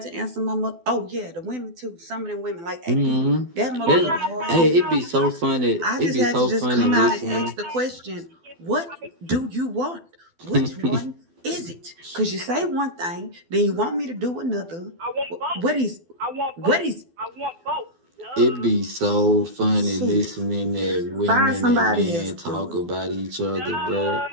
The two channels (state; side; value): late; left; 12 ms